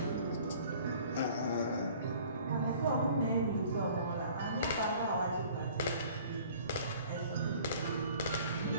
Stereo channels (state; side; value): inverted; both; correlation -0.51